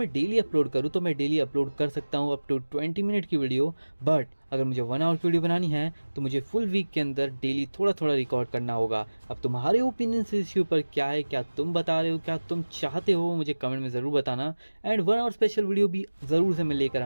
डेली अपलोड करूं तो मैं डेली अपलोड कर सकता हूं अप टू 20 मिनट की वीडियो, बट अगर मुझे 1 आवर की वीडियो बनानी है तो मुझे फुल वीक के अंदर डेली थोड़ा थोड़ा रिकॉर्ड करना होगा। अब तुम्हारे ओपिनियन इस इश्यू पर क्या है, क्या तुम बता रहे हो, क्या तुम चाहते हो, मुझे कमेंट में ज़रूर बताना। एंड 1 आवर स्पेशल वीडियो भी ज़रूर से मैं लेकर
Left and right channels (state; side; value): inverted; both; correlation -1.00